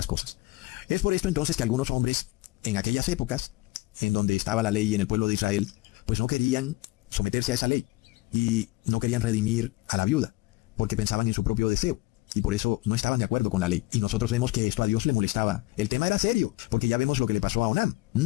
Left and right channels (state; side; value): quieter; right; 20.8 dB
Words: cosas. Es por esto entonces que algunos hombres, en aquellas épocas, en donde estaba la ley en el pueblo de Israel, pues no querían someterse a esa ley, y no querían redimir a la viuda, porque pensaban en su propio deseo. Y por eso no estaban de acuerdo con la ley. Y nosotros vemos que esto a Dios le molestaba. El tema era serio, porque ya vemos lo que le pasó a Onán,